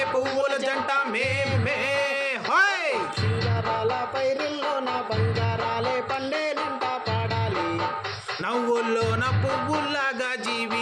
పువ్వుల జంట మేమే. హోయ్ సింగారాల పైరుల్లో నా బంగారాలే పండేనంట పాడాలి. నవ్వుల్లో నా పువ్వుల్లాగా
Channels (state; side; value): identical; both; correlation 1.00